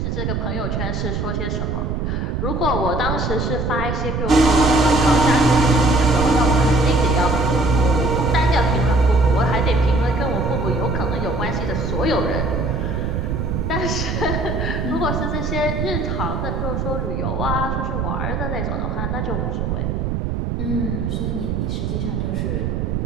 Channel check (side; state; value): right; noise; rumble, 1 dB below the sound